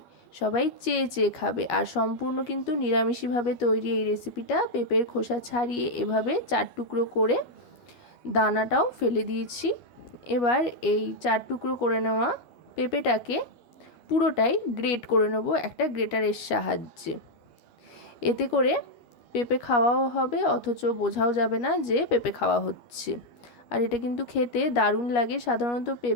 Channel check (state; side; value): late; right; 13 ms